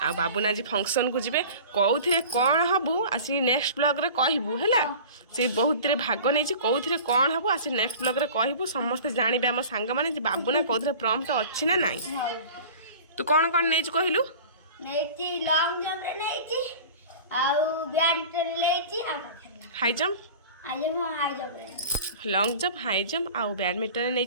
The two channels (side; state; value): both; inverted; correlation -0.39